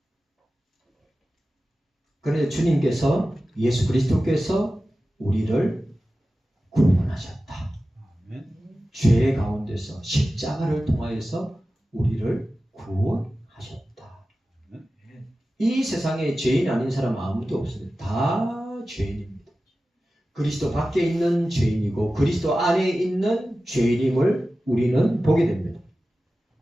그런데 주님께서, 예수 그리스도께서 우리를 구원하셨다. 죄 가운데서 십자가를 통하여서 우리를 구원하셨다. 이 세상에 죄인 아닌 사람 아무도 없습니다. 다 죄인입니다. 그리스도 밖에 있는 죄인이고 그리스도 안에 있는 죄인임을 우리는 보게 됩니다.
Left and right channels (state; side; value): normal; both; correlation 0.95